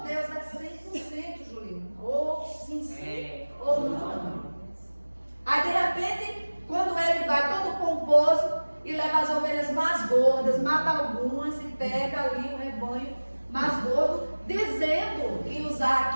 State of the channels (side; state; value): both; inverted; correlation -1.00